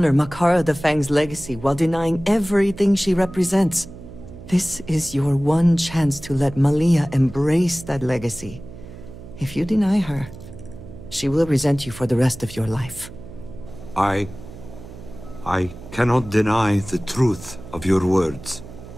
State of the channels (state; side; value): noise; right; hum, 15 dB below the sound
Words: Makara the Fang's legacy while denying everything she represents? This is your one chance to let Malia embrace that legacy. If you deny her, she will resent you for the rest of your life. I cannot deny the truth of your words.